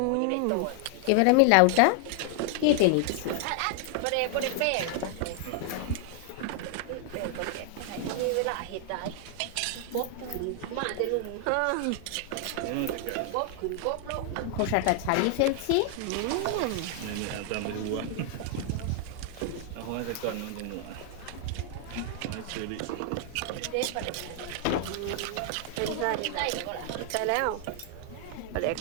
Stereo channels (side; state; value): both; different; correlation 0.00